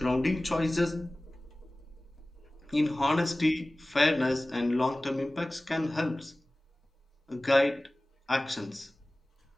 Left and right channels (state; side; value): normal; both; correlation 0.98